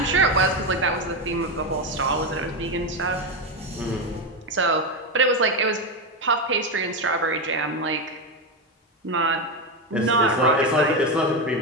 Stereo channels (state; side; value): normal; both; correlation 0.12